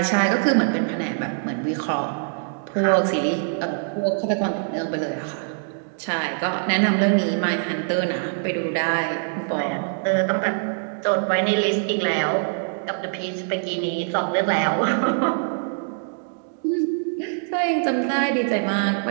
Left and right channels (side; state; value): left; silent; digital silence